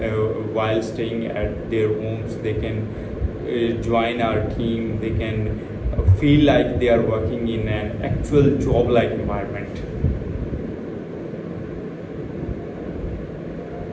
while staying at their homes. They can join our team. They can feel like they are working in an actual job-like environment.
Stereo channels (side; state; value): both; identical; correlation 1.00